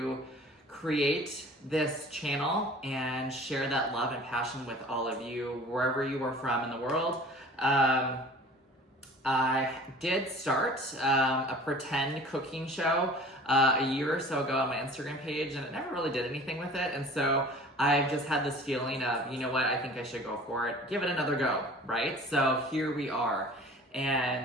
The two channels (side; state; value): both; normal; correlation 0.45